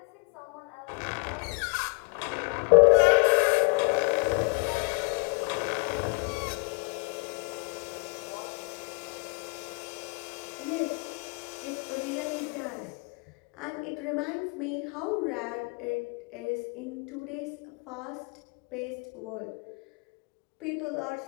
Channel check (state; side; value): quieter; right; 36.4 dB